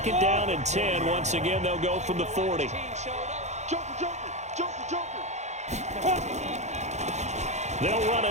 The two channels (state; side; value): late; left; 0.33 ms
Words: down and 10. Once again, they'll go from the 40. They'll run